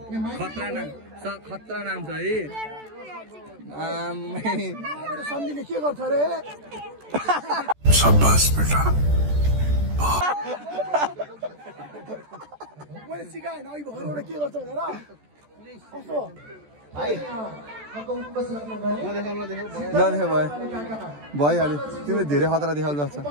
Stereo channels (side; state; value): left; late; 14 ms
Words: खतरा नाम छ है सम्झिने के गर्छ रे शाबाश बेटा मैले सिकाएन अघि भएर एउटा के गर्छ भनेर कस्तो नदेख भइहाल्यो तिमीले धेरै खतरा देखाउनु जस्तो